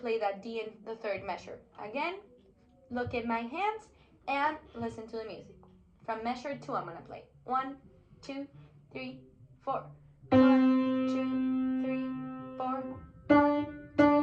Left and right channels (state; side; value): identical; both; correlation 1.00